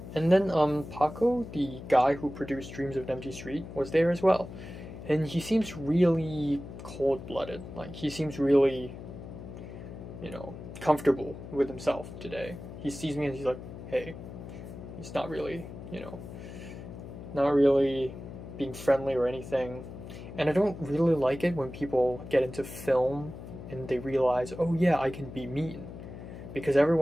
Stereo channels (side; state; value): left; noise; hum, 12 dB below the sound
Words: then Paco, the guy who produced Dreams of an Empty Street, was there as well. And he seems really cold-blooded. Like, he seems really, you know, comfortable with himself today. He sees me and he's like, hey. He's not really, you know, not really being friendly or anything. And I don't really like it when people get into film and they realize, oh yeah, I can be mean. Because